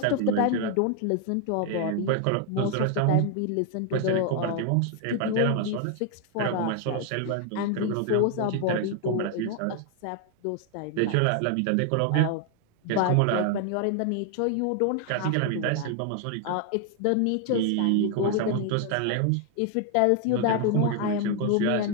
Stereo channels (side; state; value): both; different; correlation 0.00